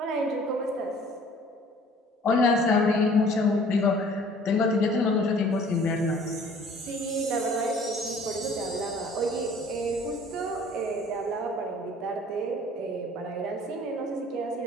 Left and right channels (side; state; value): both; normal; correlation 0.52